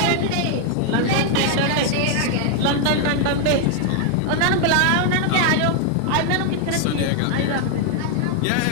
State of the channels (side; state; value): both; different; correlation 0.00